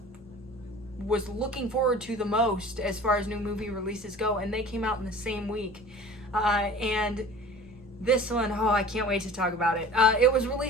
was looking forward to the most as far as new movie releases go, and they came out in the same week. And this one, I can't wait to talk about it. It was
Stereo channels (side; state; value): both; normal; correlation 0.42